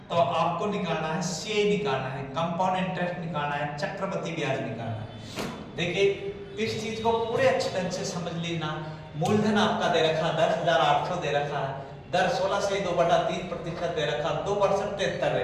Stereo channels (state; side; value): identical; both; correlation 1.00